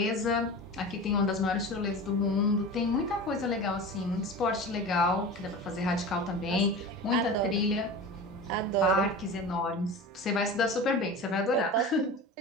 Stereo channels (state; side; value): normal; both; correlation 0.32